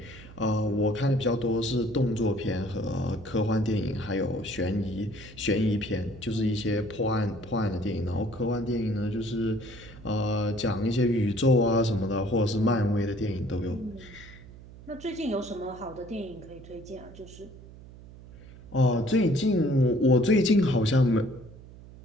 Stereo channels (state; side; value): noise; right; hum, 18 dB below the sound